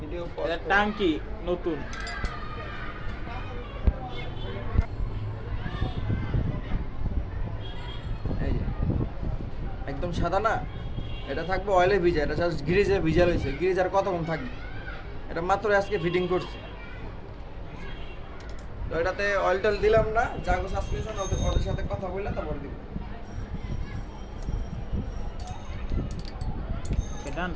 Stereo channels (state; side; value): identical; both; correlation 1.00